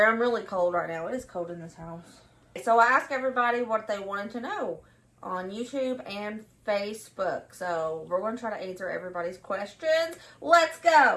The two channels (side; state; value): both; identical; correlation 1.00